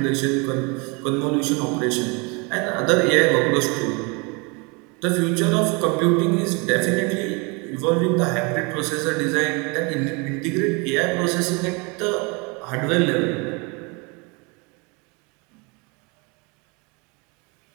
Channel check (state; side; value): quieter; left; 30.1 dB